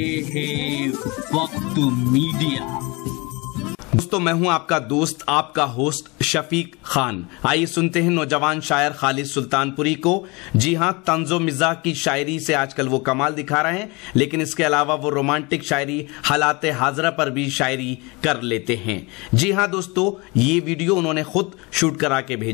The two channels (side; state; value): right; quieter; 26.4 dB